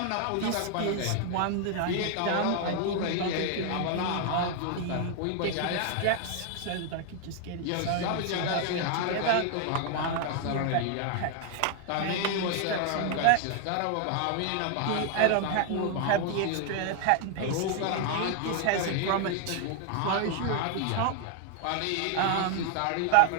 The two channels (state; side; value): different; both; correlation 0.00